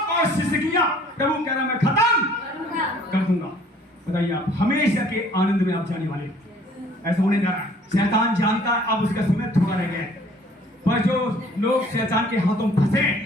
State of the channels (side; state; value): both; normal; correlation 0.56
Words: और सिसकियां प्रभु कह रहा मैं खत्म कर दूंगा। बताइए आप हमेशा के आनंद में आप जाने वाले, ऐसा होने जा रहा है। शैतान जानता है अब उसका समय थोड़ा रह गया है, पर जो लोग शैतान के हाथों में फंसे